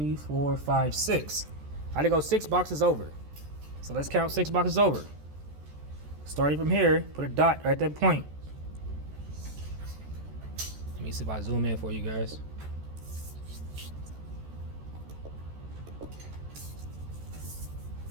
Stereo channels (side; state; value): left; late; 14 ms